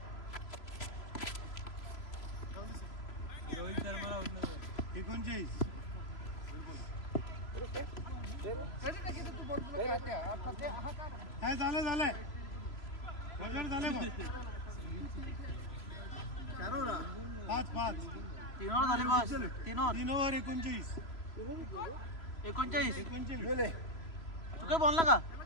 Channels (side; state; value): right; late; 3.0 ms